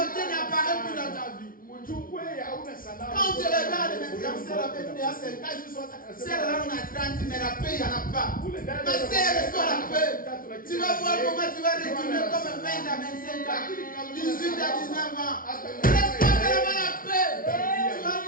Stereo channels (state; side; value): late; right; 0.41 ms